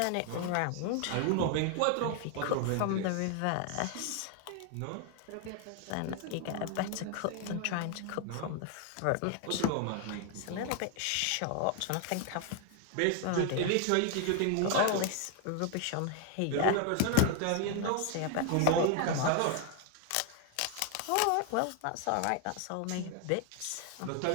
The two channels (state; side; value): different; both; correlation 0.00